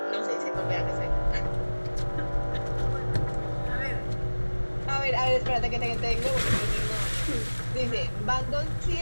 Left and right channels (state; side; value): inverted; both; correlation -1.00